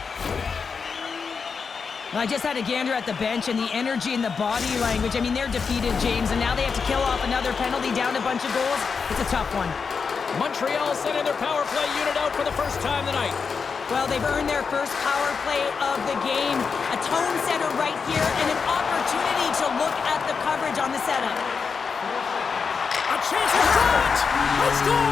I just had a gander at the bench and the energy and the body language. I mean, they're defeated, James, and now they have to kill off another penalty, down a bunch of goals. It's a tough one. Montreal sending their power play unit out for the first time tonight. Well, they've earned their first power play of the game. A tone setter right here and an opportunity to look at the coverage on the setup. A chance to shot! A score!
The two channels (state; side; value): quieter; right; 5.5 dB